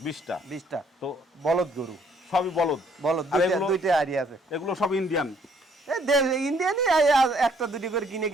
20টা। তো বলদ গরু, সবই বলদ। দুইটা আইডিয়া আছে। এগুলো সব ইন্ডিয়ান? ইন্ডিয়ানই, একটা দুটি করে কিনে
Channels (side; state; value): both; normal; correlation 0.65